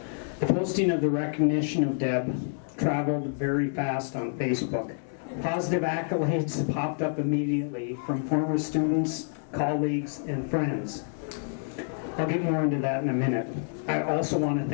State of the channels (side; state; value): right; silent; 59 dB below the other